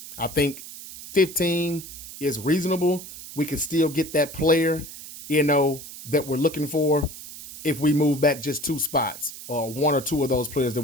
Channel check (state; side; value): noise; right; hiss, 13 dB below the sound